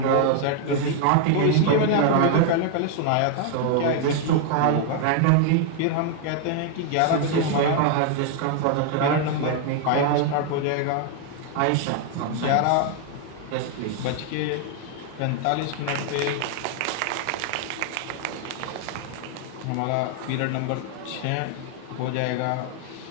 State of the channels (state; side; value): different; both; correlation 0.00